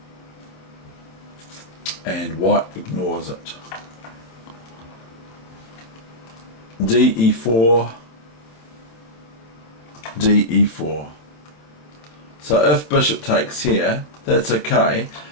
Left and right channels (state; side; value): late; right; 26 ms